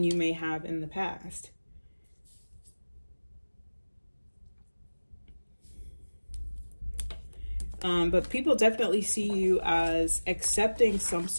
you may have in the past. But people definitely see you as accepting some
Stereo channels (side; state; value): both; inverted; correlation -1.00